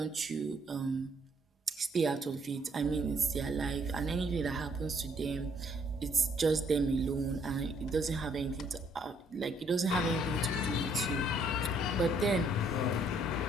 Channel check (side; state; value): both; normal; correlation 0.67